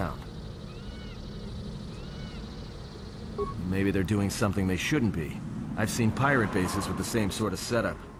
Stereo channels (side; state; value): both; identical; correlation 1.00